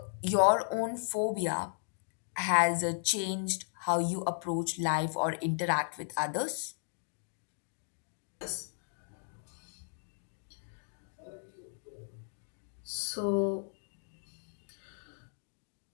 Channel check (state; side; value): silent; right; digital silence